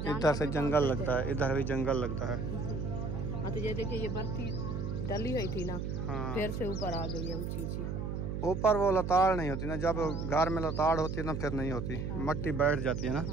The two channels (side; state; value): right; noise; hum, 3 dB below the sound